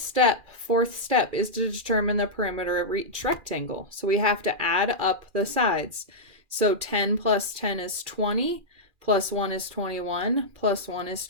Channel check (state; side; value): late; left; 2.4 ms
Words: fourth step, is to determine the perimeter of each rectangle. So we have to add up the sides. So 10 plus 10 is 20, plus 1 is 21, plus 1 is